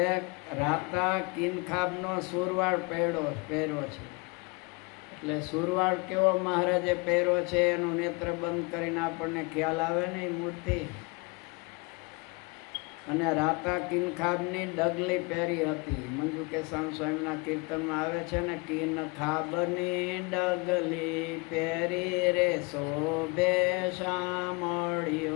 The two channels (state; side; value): quieter; right; 29.3 dB